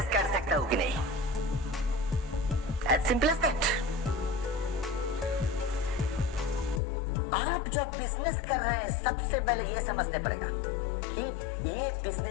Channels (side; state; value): right; drops out; at 6.8 s